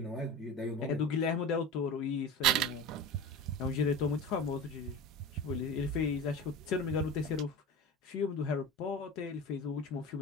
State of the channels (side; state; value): both; normal; correlation 0.31